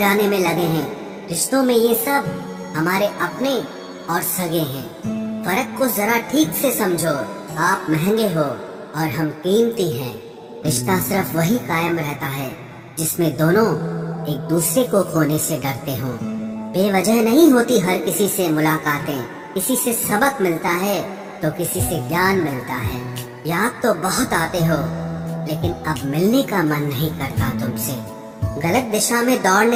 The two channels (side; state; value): both; identical; correlation 1.00